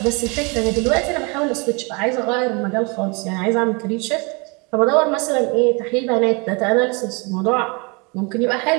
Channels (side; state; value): left; quieter; 30.4 dB